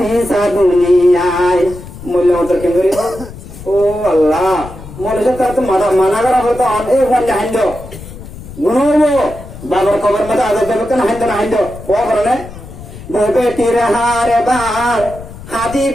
দুনিয়ায় মূল্য মতর ক্যাঙ্গরিব ও আল্লাহ মনে তার তো মানা করা হতো অনেক ফোন হাইন্দ গুনবো বাবার কবর মধ্যে আজাদ দেবে কেন হাইন্দ না হাইন্দ ও কারণে বেটির হার বার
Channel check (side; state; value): left; noise; rumble, 14 dB below the sound